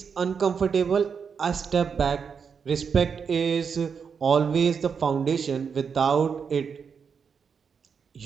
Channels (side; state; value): left; quieter; 6.3 dB